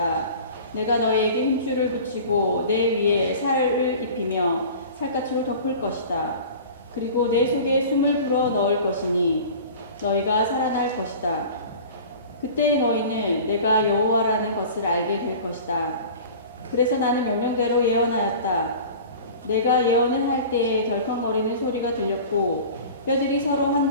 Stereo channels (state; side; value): inverted; both; correlation -0.40